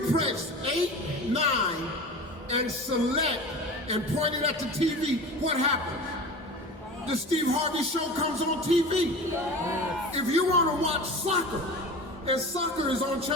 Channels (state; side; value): normal; both; correlation 0.34